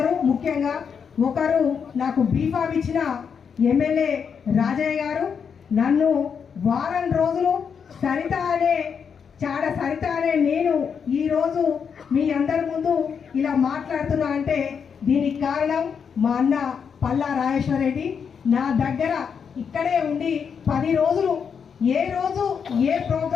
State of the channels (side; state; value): right; quieter; 6.7 dB